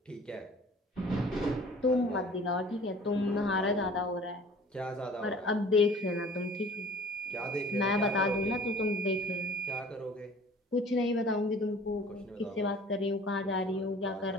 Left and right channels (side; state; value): both; normal; correlation 0.48